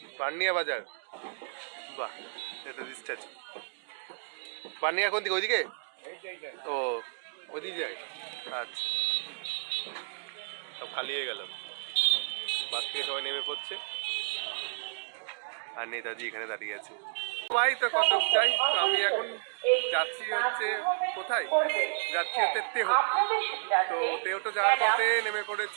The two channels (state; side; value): silent; left; digital silence